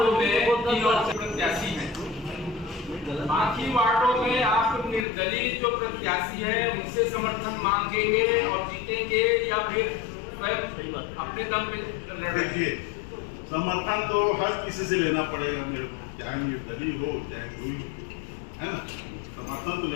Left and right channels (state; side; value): drops out; right; at 5.1 s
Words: में 3 और से प्रत्याशी हैं, बाकी वार्डों में आप निर्दलीय जो प्रत्याशी है उनसे समर्थन मांगेंगे और जीतेंगे या फिर स्वयं अपने दम पे लड़ेंगे? देखिए समर्थन तो हर किसी से लेना पड़ेगा मेरे को, चाहे निर्दलीय हो चाहे कोई, है ना, समर्थन तो